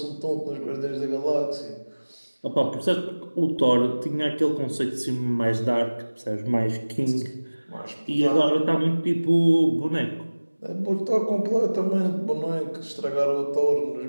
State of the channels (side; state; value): both; inverted; correlation -1.00